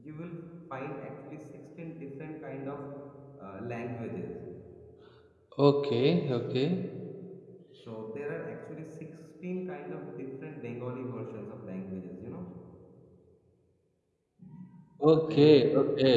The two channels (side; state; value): both; identical; correlation 1.00